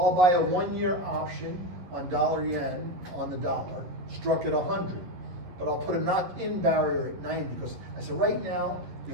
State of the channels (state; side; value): late; left; 11 ms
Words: buy a 1-year option on dollar-yen on the dollar, struck at 100. But I'll put a knock-in barrier at 90 because I said right now,